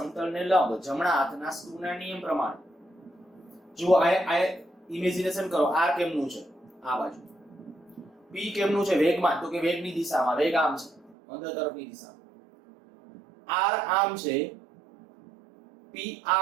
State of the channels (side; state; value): left; drops out; at 11.2 s